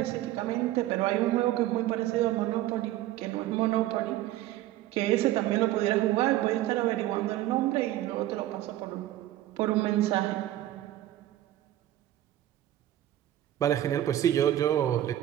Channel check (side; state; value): left; quieter; 14.0 dB